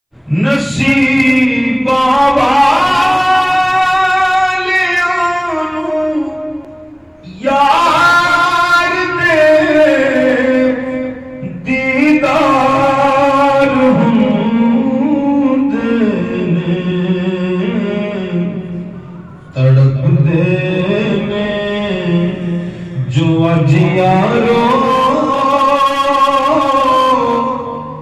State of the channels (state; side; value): identical; both; correlation 1.00